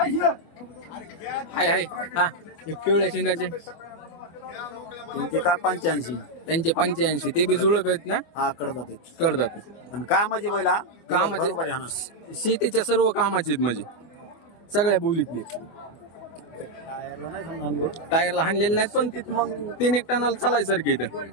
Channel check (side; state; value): right; late; 24 ms